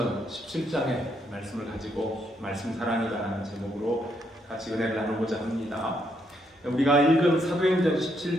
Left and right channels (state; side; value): normal; both; correlation 0.76